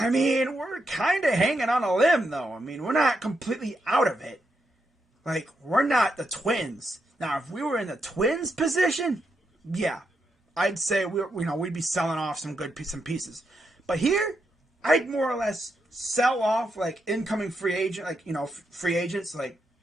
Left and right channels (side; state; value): both; normal; correlation 0.82